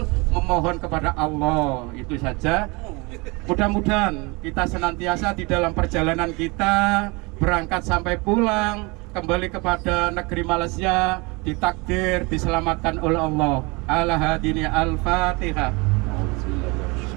memohon kepada Allah. Itu saja. Mudah-mudahan kita senantiasa di dalam perjalanan kita berangkat sampai pulang kembali kepada negeri Malaysia ditakdir diselamatkan oleh Allah. Ala hadini al-Fatihah.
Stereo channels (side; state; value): left; quieter; 27.0 dB